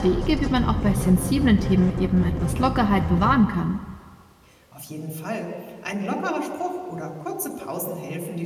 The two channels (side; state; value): both; identical; correlation 1.00